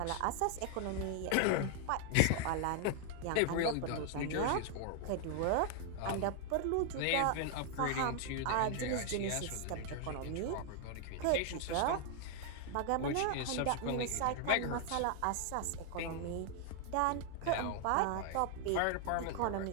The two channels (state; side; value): different; both; correlation 0.00